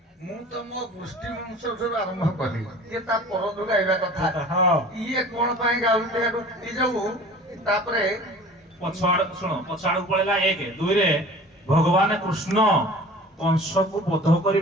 ମୁଁ ତ ମୋ ଗୋଷ୍ଠୀ ବଂଶଠାରୁ ଆରମ୍ଭ କଲି, ଇଏ ତା ପରଠୁ ଗାଇବା କଥା। ଇଏ କଣ ପାଇଁ ଗାଉଥିଲେ ଏ ଯୋଉ ତାପରେ ଶୁଣ ପଛଆଡକୁ ପଳେଇଲା। 1 2ରେ ଭଗବାନ କୃଷ୍ଣ କଂସକୁ ବଧ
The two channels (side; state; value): both; normal; correlation 0.43